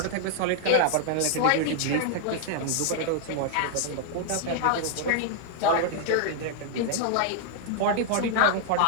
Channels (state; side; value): different; both; correlation -0.01